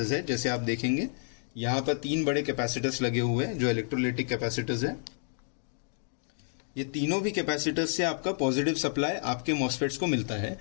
है, जैसे आप देखेंगे यहां पर 3 बड़े कैपेसिटर्स लगे हुए हैं जो इलेक्ट्रोलाइटिक कैपेसिटर्स है। ये तीनों भी कैपेसिटर्स से आपका पॉजिटिव सप्लाई आपके मॉसफेट्स को मिलता है,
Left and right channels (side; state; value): right; silent; 58 dB below the other